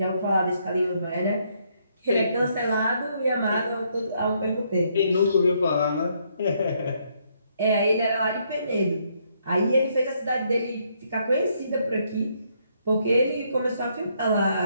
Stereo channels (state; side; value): inverted; both; correlation -0.72